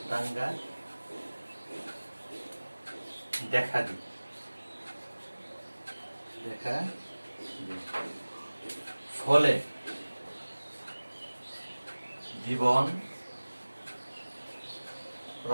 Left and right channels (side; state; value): both; inverted; correlation -1.00